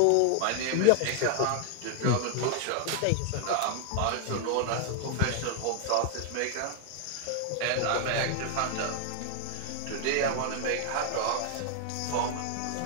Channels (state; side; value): different; both; correlation 0.00